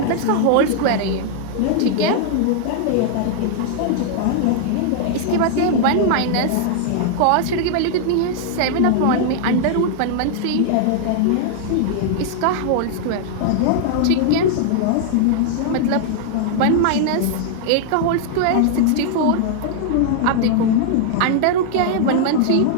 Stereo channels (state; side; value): different; both; correlation -0.01